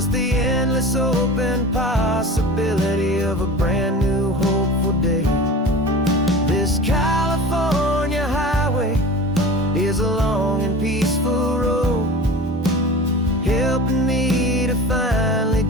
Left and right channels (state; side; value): normal; both; correlation 0.36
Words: the endless open possibility of a brand new hopeful day. This California highway is a long and peaceful road, helping me to finally